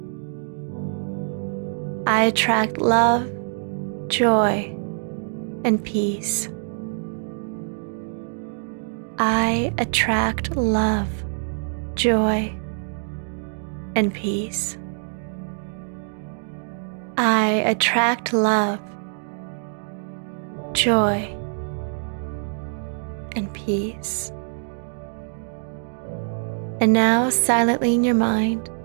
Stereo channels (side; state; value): left; silent; digital silence